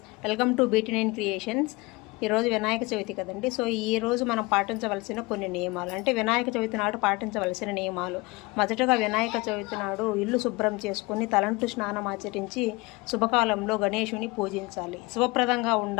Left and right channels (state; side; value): quieter; right; 23.9 dB